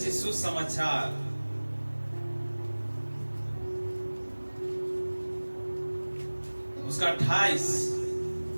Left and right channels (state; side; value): inverted; both; correlation -1.00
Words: सुसमाचार उसका 28